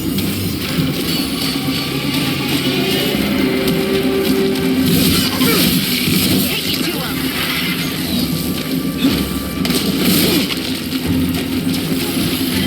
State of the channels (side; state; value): both; identical; correlation 1.00